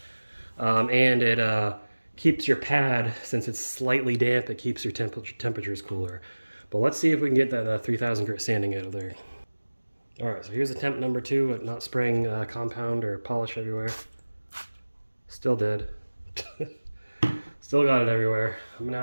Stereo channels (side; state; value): both; inverted; correlation -1.00